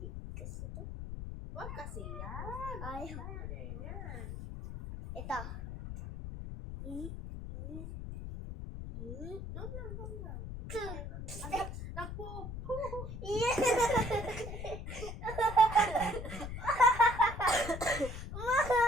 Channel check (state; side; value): noise; left; rumble, 8 dB below the sound